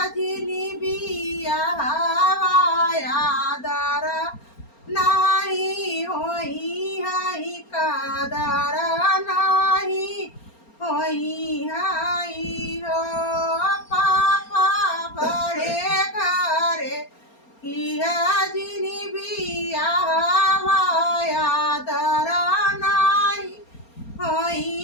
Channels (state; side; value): late; right; 4.3 ms